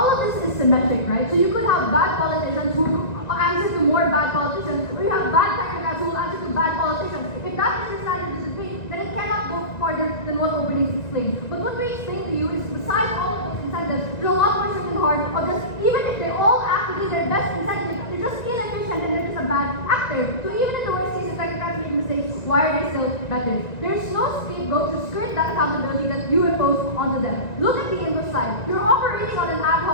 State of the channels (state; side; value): late; right; 1.9 ms